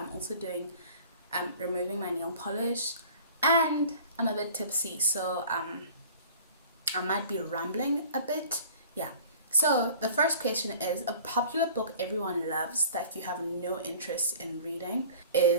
also doing removing my nail polish, and I'm a bit tipsy, so I might be rambling a bit. Yeah. So the first question is, a popular book everyone loves that you have no interest in reading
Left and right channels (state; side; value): inverted; both; correlation -0.46